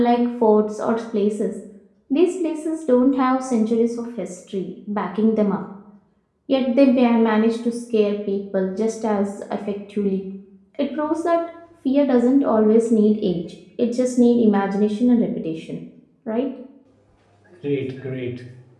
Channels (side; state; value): both; identical; correlation 1.00